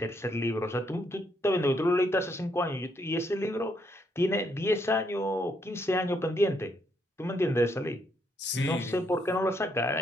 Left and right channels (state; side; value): normal; both; correlation 0.74